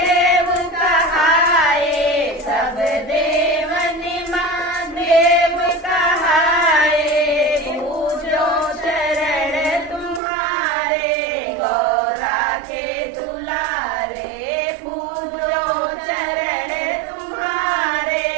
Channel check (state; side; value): drops out; left; at 10.2 s